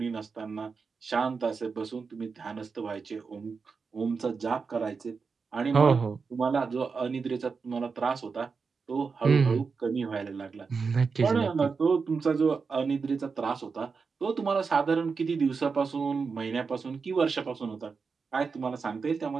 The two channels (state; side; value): quieter; left; 5.1 dB